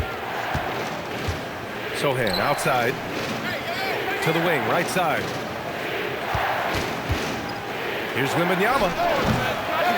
Sohan outside. To the wing, right side. Here's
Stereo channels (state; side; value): identical; both; correlation 1.00